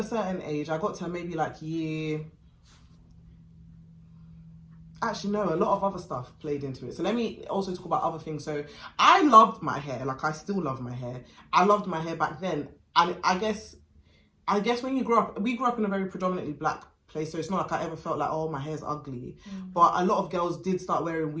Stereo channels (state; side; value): identical; both; correlation 1.00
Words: certain age. I got to maybe like year. Actually, no, a lot of other stuff played into it. So let me also talk about other things. So I loved my hair. Like, I still love my hair. I loved my hair back then. And I guess when you grow up, we grew up in a very predominantly black place. So it's not like I ever felt like, oh, my hair's ugly. But a lot of girls did start wearing